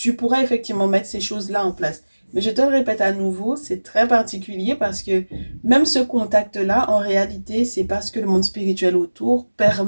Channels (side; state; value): both; inverted; correlation -1.00